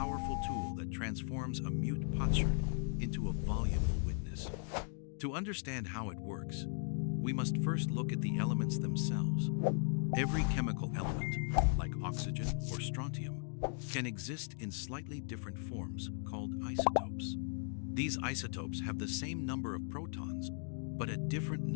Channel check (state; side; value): silent; right; 53 dB below the other